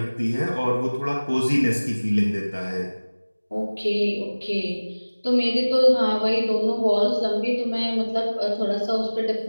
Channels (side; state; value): both; inverted; correlation -1.00